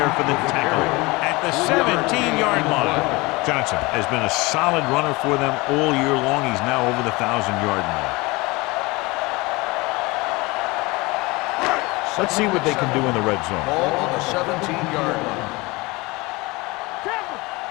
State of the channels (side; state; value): right; quieter; 23.6 dB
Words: for the tackle at the 17-yard line. Johnson has been a solid runner for them all year long. He's now over the 1,000-yard mark. Let's see what they can do in the red zone. Ball on the 17-yard line.